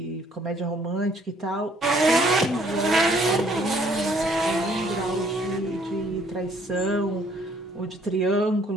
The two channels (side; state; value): both; normal; correlation 0.63